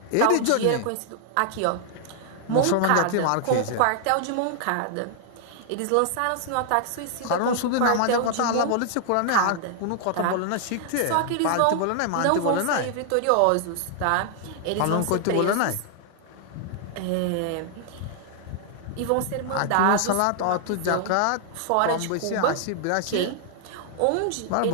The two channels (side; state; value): both; different; correlation 0.00